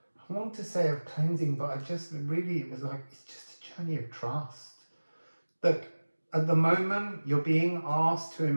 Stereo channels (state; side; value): inverted; both; correlation -1.00